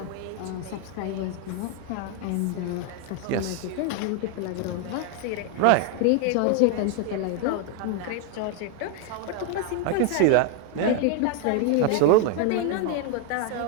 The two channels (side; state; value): both; different; correlation 0.01